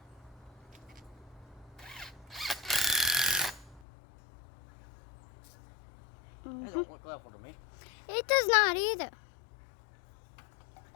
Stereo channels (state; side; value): drops out; right; at 3.8 s